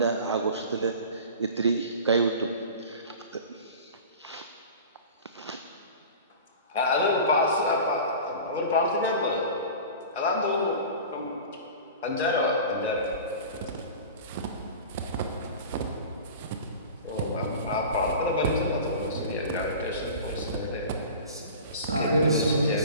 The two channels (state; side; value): inverted; both; correlation -0.37